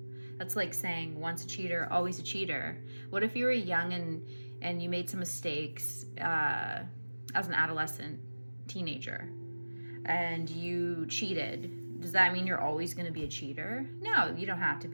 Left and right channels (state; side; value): inverted; both; correlation -1.00